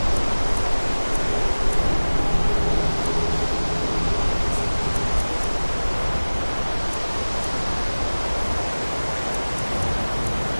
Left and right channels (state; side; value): inverted; both; correlation -1.00